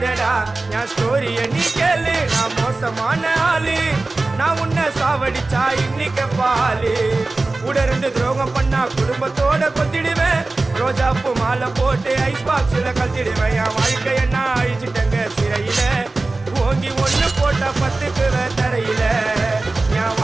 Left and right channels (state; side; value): quieter; left; 3.3 dB